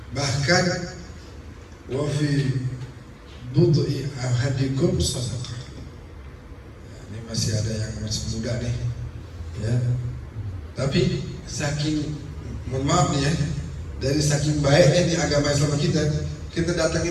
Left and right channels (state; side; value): identical; both; correlation 1.00